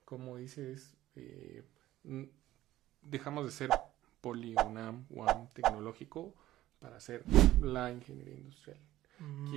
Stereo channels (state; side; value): quieter; left; 14.9 dB